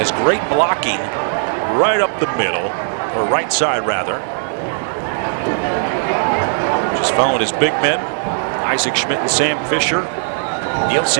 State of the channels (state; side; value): silent; left; digital silence